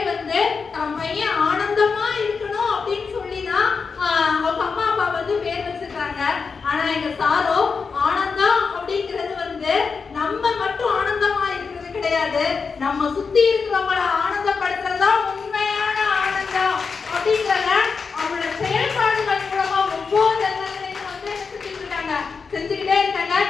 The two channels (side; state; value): right; quieter; 5.2 dB